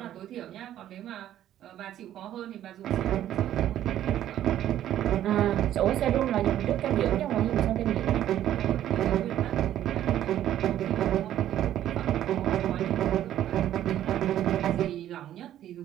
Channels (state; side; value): quieter; left; 11.9 dB